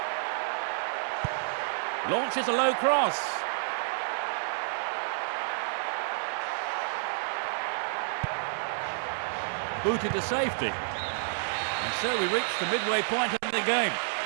Launches a low cross. Booted to safety. And so we reach the midway point in the game.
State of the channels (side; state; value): left; silent; 58 dB below the other